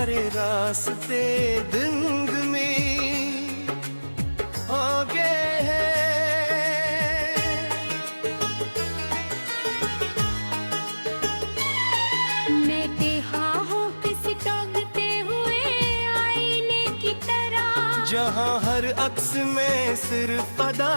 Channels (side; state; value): both; inverted; correlation -1.00